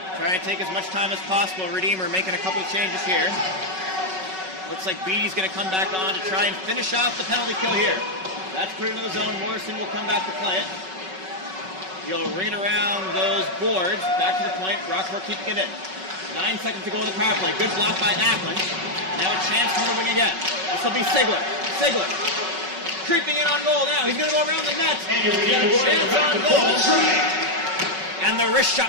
Trying to take as much time as possible. Redeemer making a couple of changes here. Looks like Beatty's going to come back on to try and finish off the penalty kill here. That's put into the zone. Morrison will come back to play it. He'll ring it around those boards. Back to the point. Brockport keeping it in. 9 seconds to go in the power play. Good block by Ackland. Now a chance from the wing again. This will be Sigler. Sigler creeping in on goal now. He's going to go around the net. And a chance on goal. And the wrist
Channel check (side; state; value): left; late; 5.3 ms